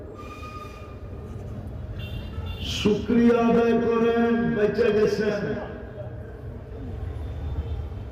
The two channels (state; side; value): identical; both; correlation 1.00